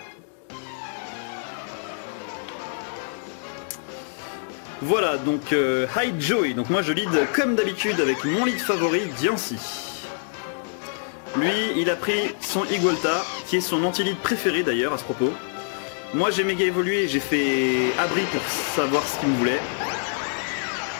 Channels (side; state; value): right; silent; digital silence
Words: Voilà donc Hide Joey, donc moi je lead comme d'habitude avec mon lead favori Diancie. Lui il a pris son Igolta qui est son anti-lead préféré d'ailleurs à ce propos. Moi j'ai méga évolué, j'ai fait abri pour savoir ce qu'il me voulait.